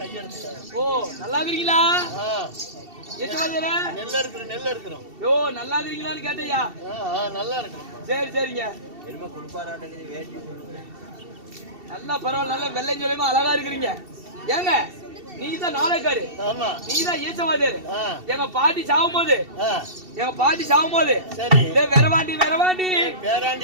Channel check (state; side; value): late; left; 2.7 ms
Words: ஓ நல்லா இருக்கீங்களா? ஈச்ச வாத்தியார். நெல்ல இருக்கிறோம். யோ நல்லா இருக்கீங்களான்னு கேட்டயா? நல்லா இருக்கிறோம். சரி சரிங்க. என்னமா குடுப்பாராட்டே வேட்டி நல்லா பரவாயில்ல, நல்லா வெள்ளையும் சொல்லியுமா அழகா இருக்கிறீங்க. ஏங்க நீங்க தான் நாளைக்காரு, ஆமா நீங்க தான் ஈச்சவாதியாரு. எங்க பாட்டி சாவும் போது சரி வெறவாண்டி வெறவாண்டி